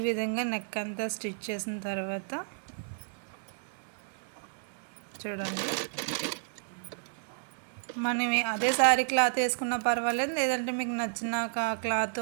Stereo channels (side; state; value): left; silent; 57 dB below the other